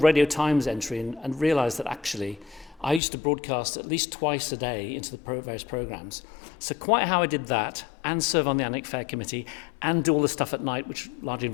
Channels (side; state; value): right; drops out; at 3.0 s